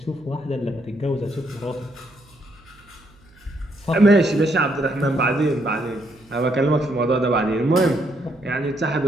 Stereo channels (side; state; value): right; noise; hum, 29 dB below the sound